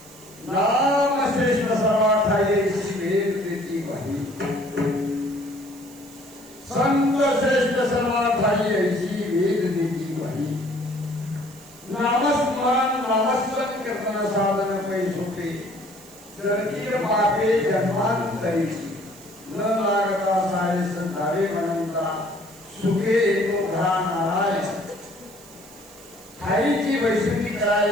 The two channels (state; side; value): noise; right; hiss, 22 dB below the sound